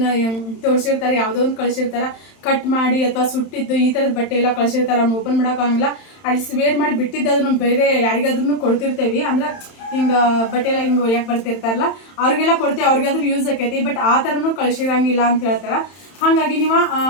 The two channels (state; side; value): late; right; 31 ms